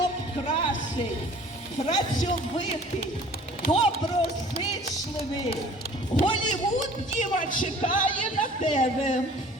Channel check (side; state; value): both; normal; correlation 0.49